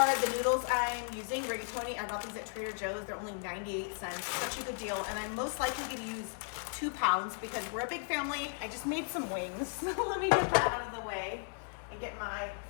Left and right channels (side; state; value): right; silent; 54 dB below the other